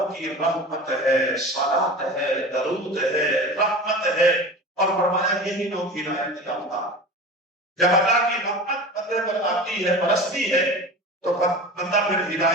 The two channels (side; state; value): both; normal; correlation 0.33